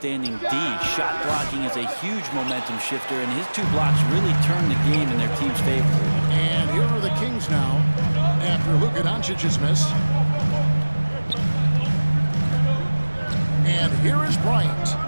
D. Shot blocking is a huge momentum shifter, and his 2 blocks really turned the game in their team's favor. And here are the Kings now after Luka Doncic's miss. And here is Bryant.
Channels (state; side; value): inverted; both; correlation -1.00